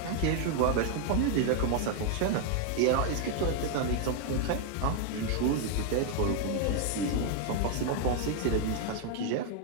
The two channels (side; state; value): both; different; correlation 0.00